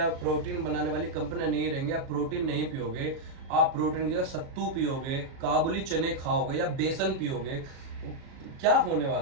प्रोटीन बनाने वाली कंपनियां नहीं रहेंगी, आप प्रोटीन नहीं पियोगे, आप प्रोटीन की जगह सत्तू पियोगे, काबुली चने खाओगे या बेसन पियोगे, क्या होने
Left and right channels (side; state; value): left; late; 37 ms